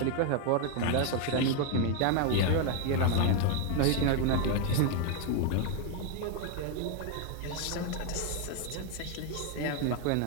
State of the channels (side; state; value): both; different; correlation 0.01